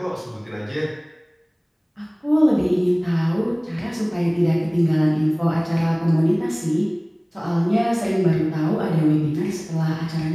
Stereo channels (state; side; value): identical; both; correlation 1.00